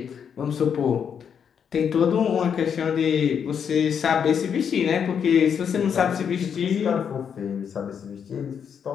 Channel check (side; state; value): right; quieter; 7.5 dB